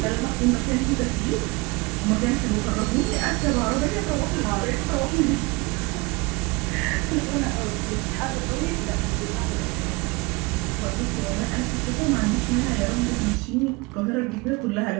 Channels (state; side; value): quieter; left; 25.5 dB